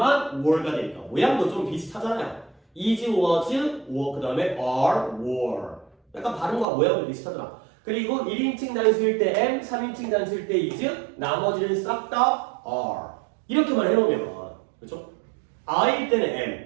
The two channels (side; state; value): left; drops out; at 6.7 s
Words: were가 되니까. 모양도 좀 비슷하잖아요. is, was, were. 그 다음에 are, were. 약간 발음과 모양도 비슷하더라. 그리고 1인칭 단수일 때 am, 3인칭 단수일 때 is, 나머지는 싹 다 are. 이렇게만 해놓으면 그렇죠? I일 때는